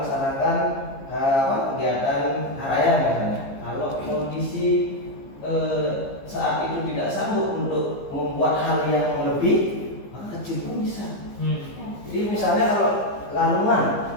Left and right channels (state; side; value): late; right; 15 ms